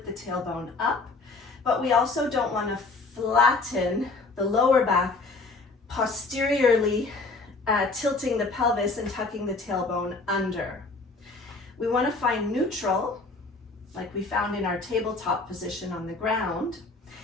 the tailbone up, but we also don't want to flatten the lower back posteriorly, tilting the pelvis and tucking the tailbone under. We want to find neutral, like we found in our tabletop position on the ground.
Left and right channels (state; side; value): quieter; right; 3.7 dB